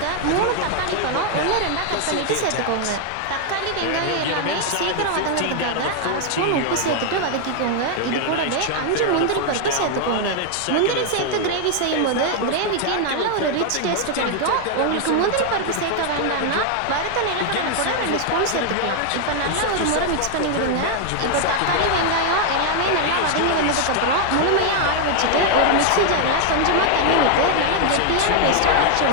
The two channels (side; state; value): both; different; correlation 0.00